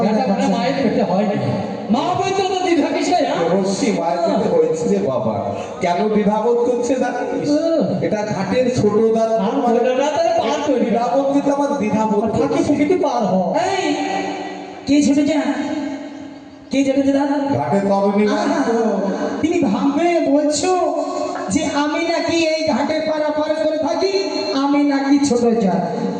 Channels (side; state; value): both; identical; correlation 1.00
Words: এটা মানে মায়ের পেটে হয় না। মা বলতো তো দ্বিধা কিসে? দেবর্ষি, মায়ের পেটে হয়েছে রে বাবা। কেন দ্বিধাবোধ করছে জানিস? এটা ঘাটের ছোট দাঁত আর বলো না, তাহলে পার করি। দ্বিধাবোধ কিন্তু আমার দ্বিধাবোধ ফাঁকি করছে। ফুকিতে পার হ। এই কে ছোট যা, কে ছোট যা দাদা? ঘাটের তরুণী আহা, তুমি ভাববে বলছো যে আমি নাকি এই ঘাটে পারাপার করে থাকি, আমি নাকি ছোট যা।